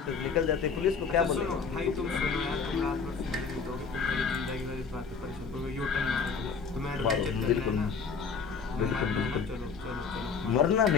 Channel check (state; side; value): quieter; right; 5.5 dB